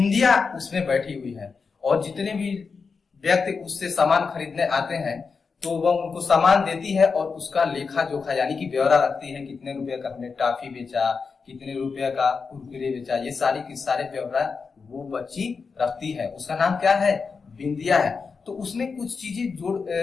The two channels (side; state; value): right; quieter; 5.1 dB